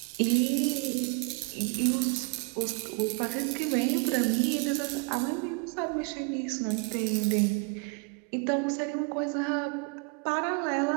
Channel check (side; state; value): left; quieter; 32.8 dB